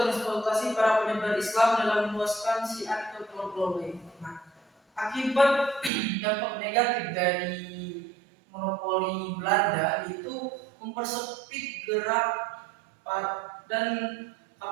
para penyebar Islam dalam meluaskan syiar ke pulau-pulau lain. Nah, akibat dampak negatif dari monopoli Belanda itu mempersempit gerak dan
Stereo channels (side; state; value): left; drops out; at 5.9 s